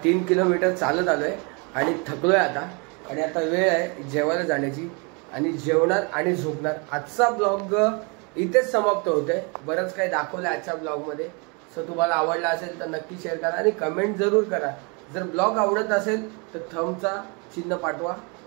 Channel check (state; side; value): quieter; left; 32.5 dB